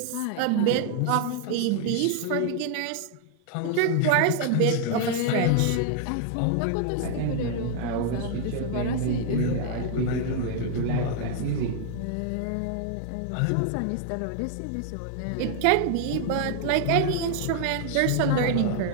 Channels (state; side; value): different; both; correlation 0.00